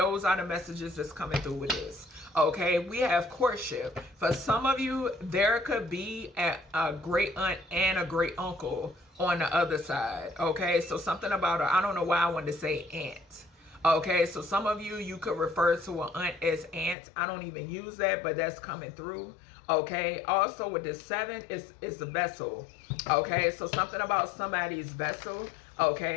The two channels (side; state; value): right; drops out; at 16.9 s